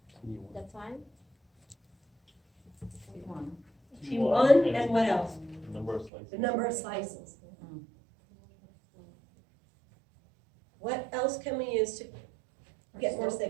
The time. T1 and what else? Number of slices. The number of slices. What else can we use to get more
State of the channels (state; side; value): drops out; left; at 6.1 s